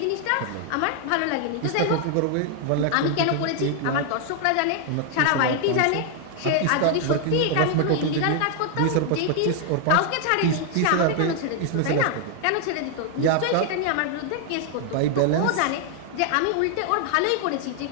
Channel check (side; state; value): both; different; correlation 0.00